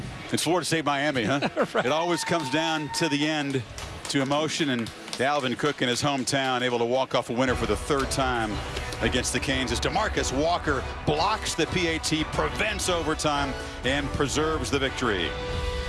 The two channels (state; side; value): identical; both; correlation 1.00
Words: It's Florida State, Miami, huh? Right. It always comes down to the end, to emotion, and Dalvin Cook in his hometown able to walk off a winner for the 3rd time against the Canes as DeMarcus Walker blocks the PAT, prevents overtime, and preserves the victory.